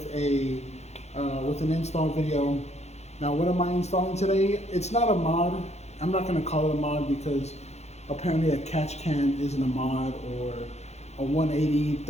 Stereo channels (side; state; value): right; late; 0.32 ms